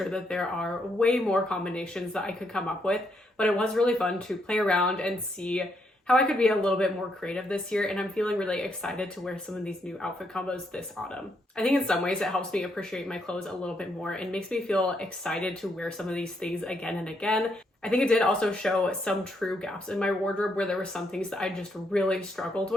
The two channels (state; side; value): normal; both; correlation 0.76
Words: that there are way more combinations that I could come up with, but it was really fun to play around and see how I could be a little bit more creative this year, and I'm feeling really excited to wear some of these new outfit combos this autumn. I think in some ways it helps me appreciate my clothes a little bit more and makes me feel excited to wear some of these things again and again. I think it did also show some true gaps in my wardrobe where there were some things that I just really struggled